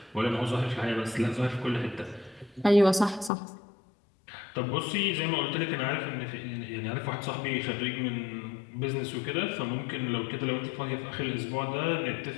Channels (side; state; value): right; drops out; at 3.3 s